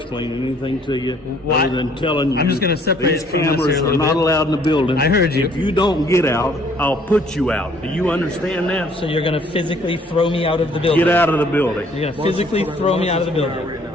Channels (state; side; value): normal; both; correlation 0.60